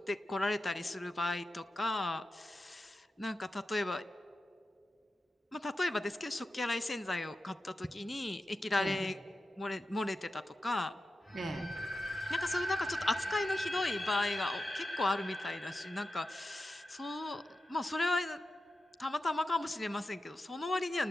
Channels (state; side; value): normal; both; correlation 0.91